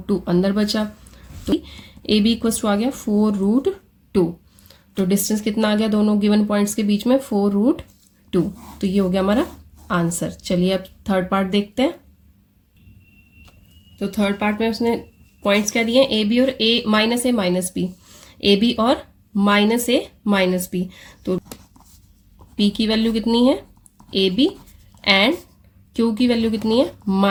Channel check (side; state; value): both; identical; correlation 1.00